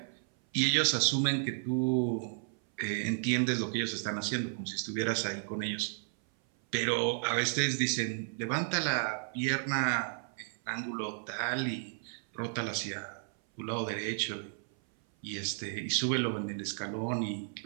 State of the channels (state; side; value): silent; left; 56 dB below the other